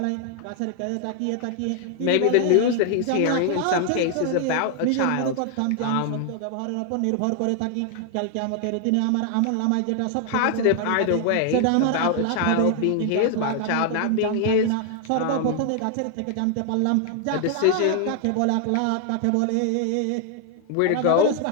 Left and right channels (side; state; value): both; different; correlation 0.00